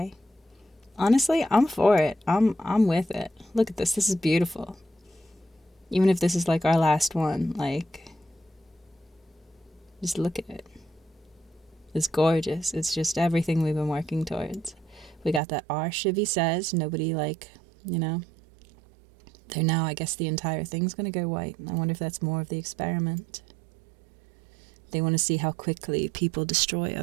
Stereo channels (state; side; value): drops out; left; at 15.4 s